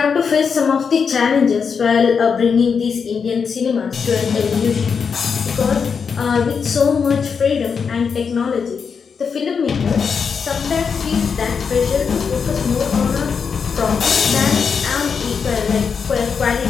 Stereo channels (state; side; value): quieter; right; 6.1 dB